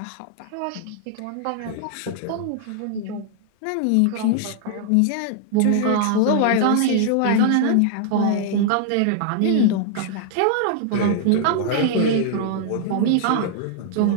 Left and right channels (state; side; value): different; both; correlation 0.00